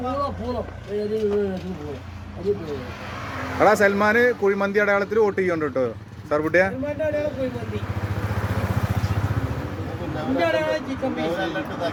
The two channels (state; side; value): identical; both; correlation 1.00